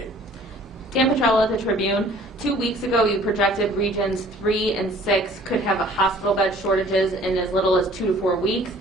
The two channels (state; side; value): normal; both; correlation 0.53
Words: Dan Petrella at the Tribune. 2 weeks ago, you projected regions 3 and 6 could have a hospital bed shortages in as little as 2 to 4 weeks.